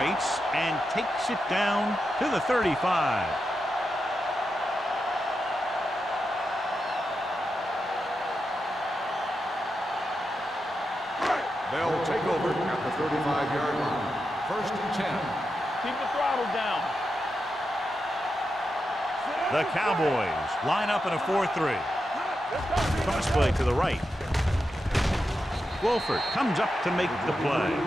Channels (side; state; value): both; normal; correlation 0.88